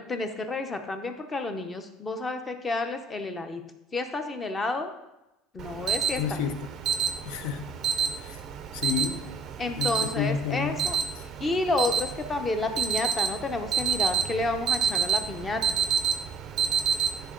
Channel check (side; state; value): both; normal; correlation 0.60